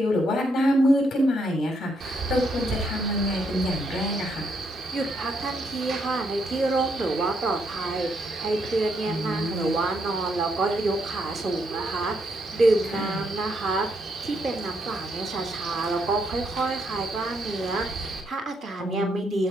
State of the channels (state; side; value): normal; both; correlation 0.76